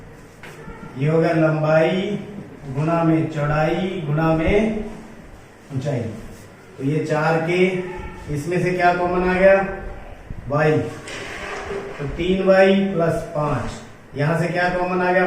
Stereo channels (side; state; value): both; identical; correlation 1.00